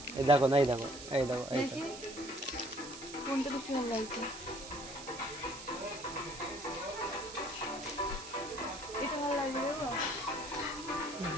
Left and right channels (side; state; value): right; noise; hiss, 12 dB below the sound